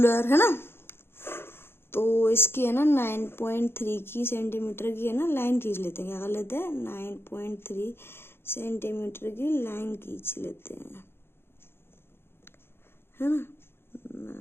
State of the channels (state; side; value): late; right; 0.11 ms